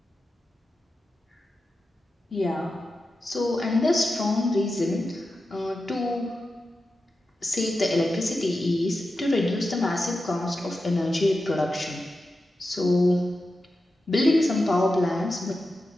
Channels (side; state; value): both; normal; correlation 0.91